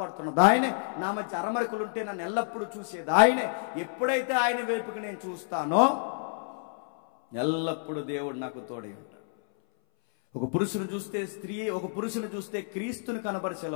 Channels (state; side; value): silent; right; 58 dB below the other